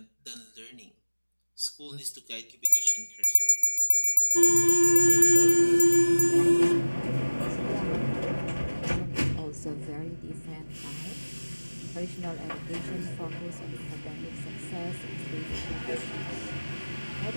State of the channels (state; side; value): inverted; both; correlation -1.00